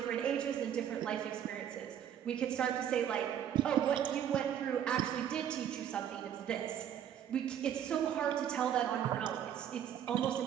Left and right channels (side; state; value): left; quieter; 9.6 dB